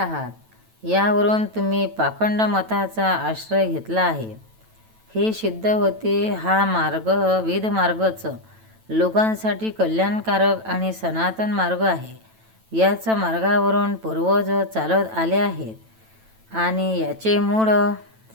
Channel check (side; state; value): left; late; 9.1 ms